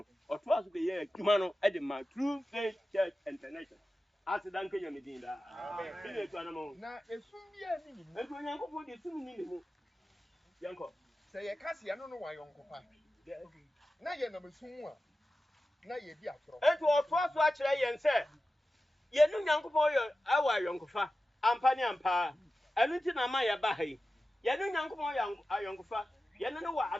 ɔto aso be yɛ adwuma no ɛde ma true faith church international asidan kenya medin da amen bi ne to anamo na esum bi ani ni mu ɛto onyankopɔn de sum ni ne mu yanko sɛ ye kase ya no no wa yonkopa na ye na mesum a na ye di atoro ɛto ɔto aso akyerɛ yɛn sɛ yɛnu nyankopɔn yɛ awa yonkofa ampa ne ampa ɛno nti na ma yɛ ba ha yi yɛnu nyankopɔn yɛ ayonkofa yɛnu no wɔ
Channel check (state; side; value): normal; both; correlation 0.94